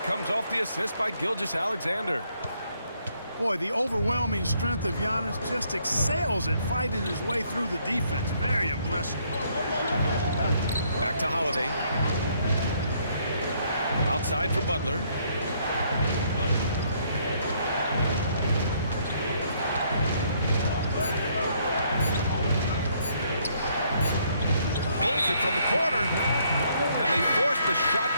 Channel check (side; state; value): both; inverted; correlation -0.69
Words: comes off the assist by Gilgeous-Alexander. Boy, the overwhelming strength of Giannis just excels at fighting his way through the defense. Very impressive. Back to Holiday. Outside for Butler. Pulls it from the corner. And they force the shot